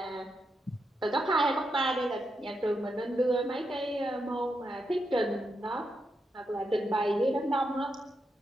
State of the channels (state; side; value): normal; both; correlation 0.84